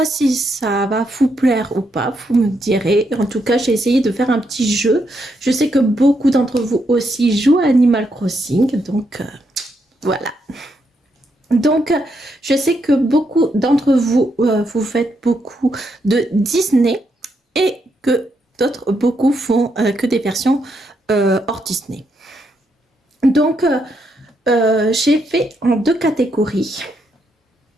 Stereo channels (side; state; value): both; normal; correlation 0.79